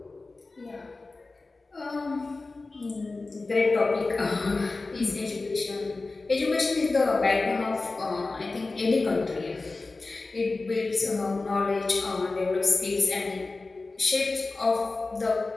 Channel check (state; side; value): quieter; right; 3.5 dB